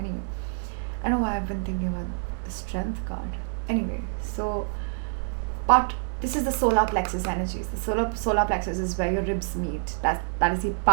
I know why I've been thinking about the strength card. Anyway, so, but this is the solar plexus energies. The solar plexus is where your ribs meet. That is the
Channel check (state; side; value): silent; left; 60 dB below the other